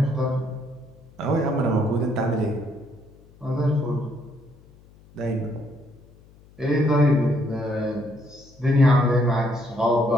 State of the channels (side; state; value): left; noise; hum, 26 dB below the sound